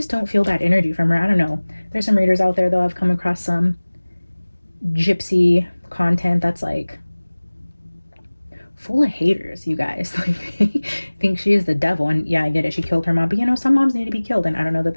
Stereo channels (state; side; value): inverted; both; correlation -1.00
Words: don't feel that energy from her. I don't know. There's some readers out there though. I've come across some Gypsy content that's like full of haters, you guys. Like, think she is the devil. And yeah, I get it, she killed her mom, but you know, some moms need to be killed, and I don't know that